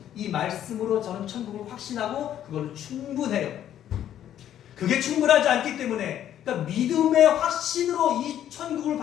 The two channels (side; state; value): right; quieter; 10.9 dB